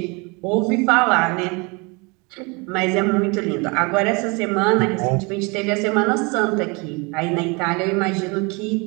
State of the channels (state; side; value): quieter; left; 28.9 dB